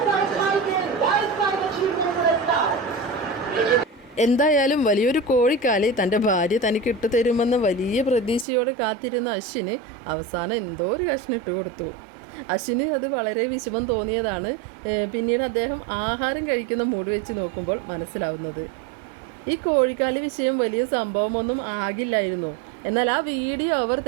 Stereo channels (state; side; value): drops out; left; at 8.5 s